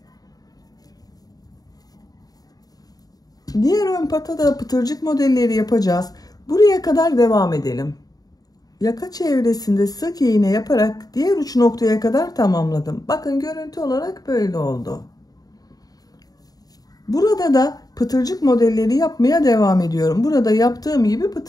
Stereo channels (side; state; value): right; late; 0.18 ms